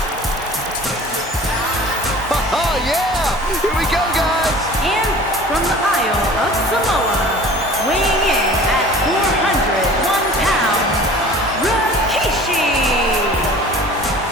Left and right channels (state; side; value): normal; both; correlation 0.44